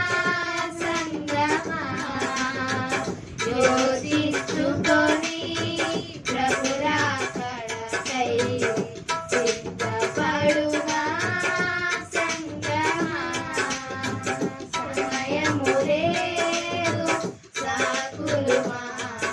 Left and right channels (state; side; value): identical; both; correlation 1.00